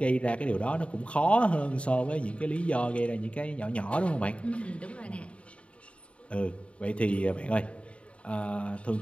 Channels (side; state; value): right; late; 0.061 ms